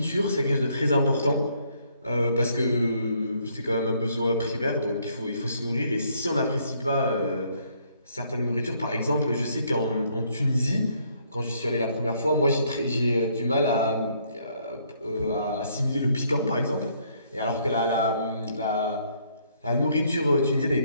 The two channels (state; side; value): inverted; both; correlation -0.68